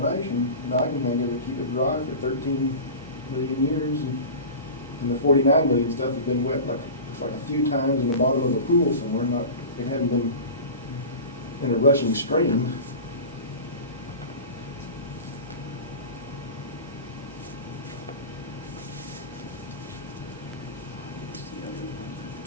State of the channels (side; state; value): both; inverted; correlation -0.32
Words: that I can think of to keep it dry for 13 million years. And the 49 million stuff has been wet it's like a few times in the bottom of a pool somewhere. It hadn't been in a rushing stream. What's the other one